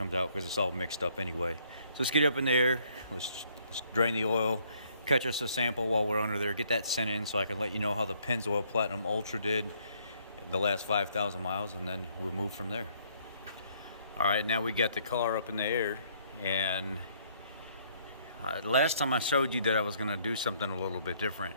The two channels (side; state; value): both; inverted; correlation -0.66